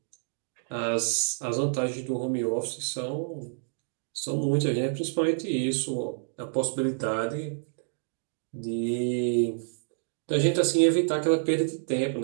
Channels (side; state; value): left; silent; digital silence